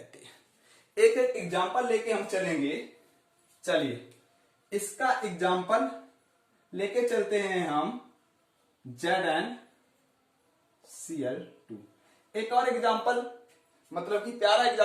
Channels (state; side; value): identical; both; correlation 1.00